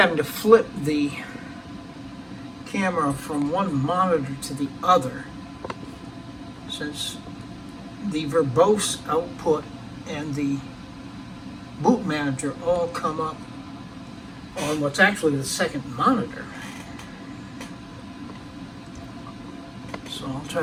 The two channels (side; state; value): both; identical; correlation 1.00